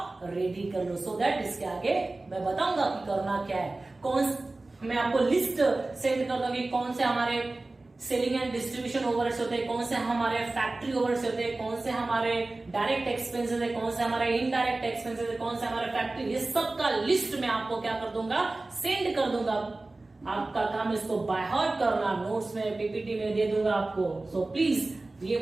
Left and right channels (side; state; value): left; quieter; 3.1 dB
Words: रेडी कर लो, सो दैट इसके आगे मैं बताऊंगा कि करना क्या है। मैं आपको लिस्ट सेंड कर दूंगी कौन से हमारे सेलिंग एंड डिस्ट्रीब्यूशन ओवरहेड्स होते हैं, कौन से हमारे फैक्ट्री ओवरहेड्स होते हैं, कौन से हमारे डायरेक्ट एक्सपेंसेस है, कौन से हमारे इनडायरेक्ट एक्सपेंसेस है, कौन से हमारे फैक्ट्री, ये सब का लिस्ट मैं आपको क्या कर दूंगा, सेंड कर दूंगा। आपका काम इसको बाय हार्ट करना, नोट्स में पीपीटी में दे दूंगा आपको। सो प्लीज ये